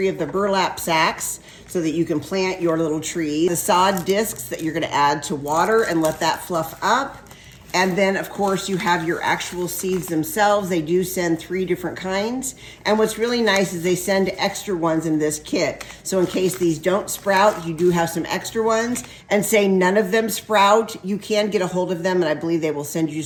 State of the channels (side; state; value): both; identical; correlation 1.00